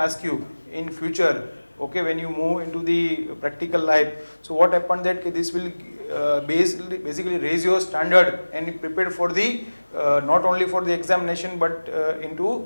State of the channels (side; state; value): both; inverted; correlation -1.00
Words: you in future, okay, when you move into the practical life. So what happened that this will basically raise your standard and prepare for the not only for the examination but